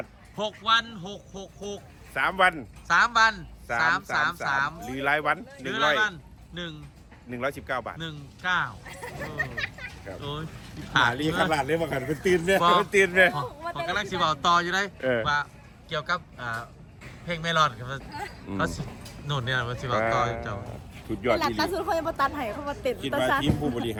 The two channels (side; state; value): both; identical; correlation 1.00